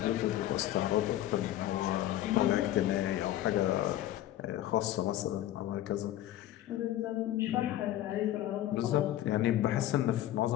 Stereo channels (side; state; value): right; quieter; 13.4 dB